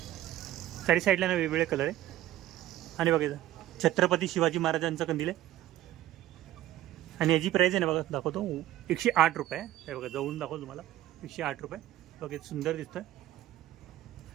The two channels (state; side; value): quieter; left; 13.9 dB